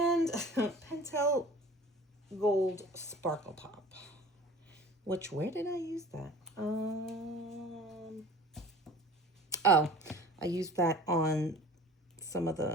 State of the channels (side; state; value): both; normal; correlation 0.43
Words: Pentel Gold Sparkle Pop. Where did I use that? Oh, I used that on some of